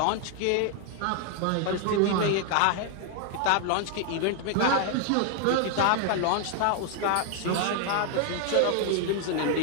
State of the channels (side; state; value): both; different; correlation 0.00